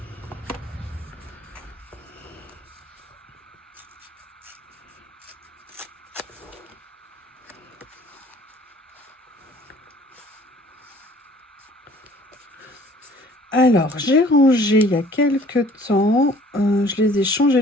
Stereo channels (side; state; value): both; normal; correlation 0.54